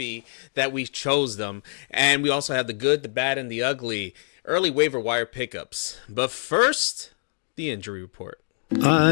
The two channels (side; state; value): right; silent; digital silence